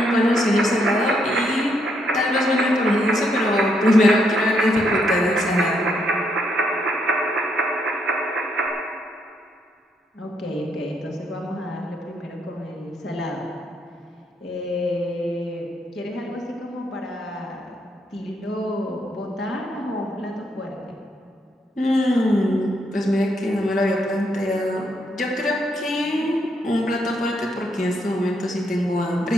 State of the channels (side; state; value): both; normal; correlation 0.75